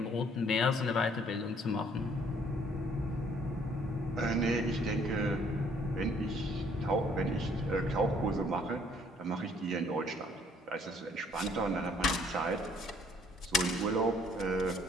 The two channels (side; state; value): both; normal; correlation 0.62